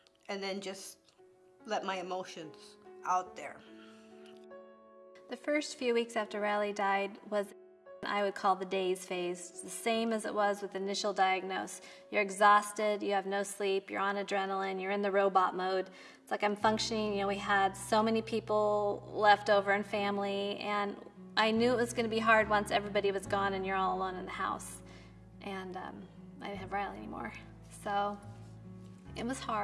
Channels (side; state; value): both; identical; correlation 1.00